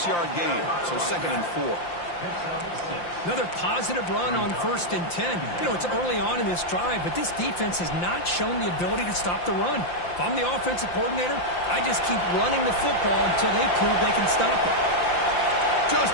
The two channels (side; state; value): right; late; 5.8 ms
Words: gain, so 2nd and 4. Another positive run on 1st and 10. You know, it's early on in this drive, but this defense has not shown the ability to stop the run. If I'm the offensive coordinator, I just keep running the football until they prove they can stop it.